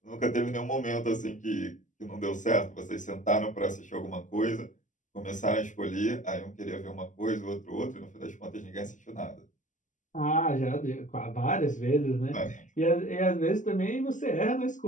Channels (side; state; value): right; late; 0.37 ms